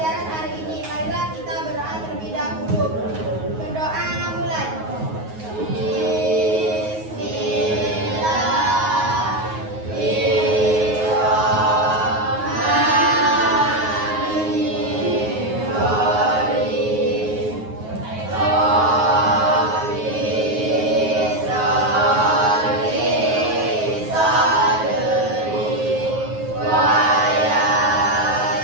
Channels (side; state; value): left; late; 9.4 ms